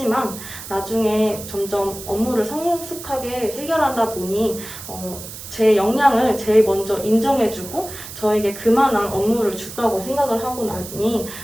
나중에 점점 업무를 성숙하게 해결하다 보니 제 역량을 제일 먼저 인정해주고 저에게 그만한 업무를 줬다고 생각을 하고 나니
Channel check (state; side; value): noise; right; hiss, 12 dB below the sound